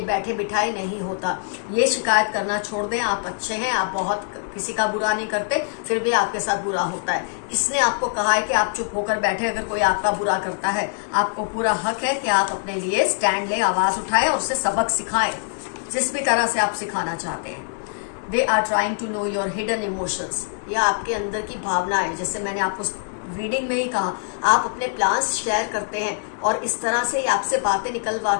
बैठे बिठाए नहीं होता। ये शिकायत करना छोड़ दें। आप अच्छे हैं, आप बहुत किसी का बुरा नहीं करते, फिर भी आपके साथ बुरा होता है। इसने आपको कहा है कि आप चुप होकर बैठे, अगर कोई आपका बुरा करता है आपको पूरा हक है कि आप अपने लिए स्टैंड ले, आवाज उठाए और उसे सबक सिखाएं, जिस भी तरह से आप सिखाना चाहते हैं। They are trying to know your hidden emotions. यह आपके अंदर की भावना है, जैसे मैंने आपको रीडिंग में ही कहा, आप अपने प्लान्स शेयर करते हैं और इस तरह से ही आपसे बातें निकलवा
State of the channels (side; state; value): right; silent; digital silence